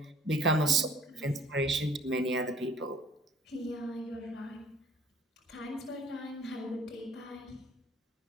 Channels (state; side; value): normal; both; correlation 0.55